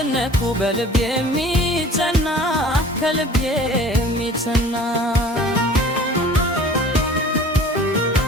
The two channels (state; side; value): normal; both; correlation 0.46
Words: በልብ የሚጸና ከልብ የሚጸና